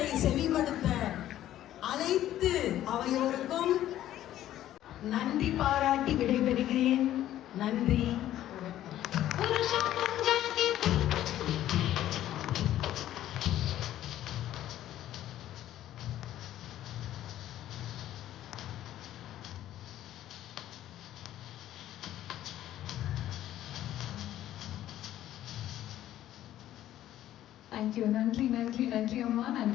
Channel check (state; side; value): quieter; right; 12.8 dB